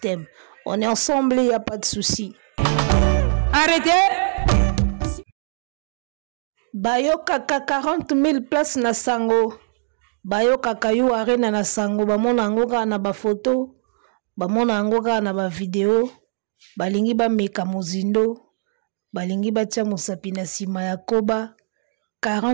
On est ensemble, il n'y a pas de souci. Arrêtez! Bayoka 40 000 places na sango. Bayoka kayu arena na sango. Bamona angoka na ba photo. Bamona angoka na ba video. Balingi ba meka mozindo. Balingi ba tia mosapi na sima ya koba.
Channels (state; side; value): silent; left; digital silence